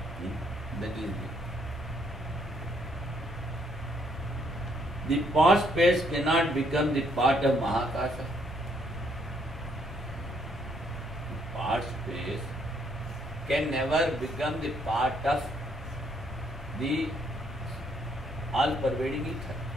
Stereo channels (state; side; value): normal; both; correlation 0.70